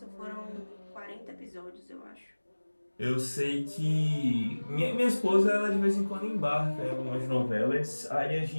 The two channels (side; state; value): both; inverted; correlation -1.00